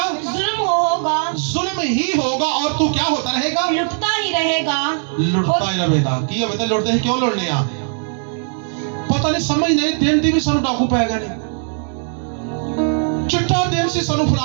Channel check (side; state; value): left; silent; 56 dB below the other